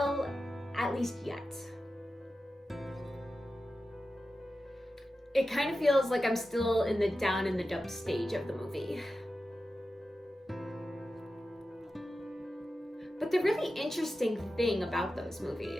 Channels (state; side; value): normal; both; correlation 0.92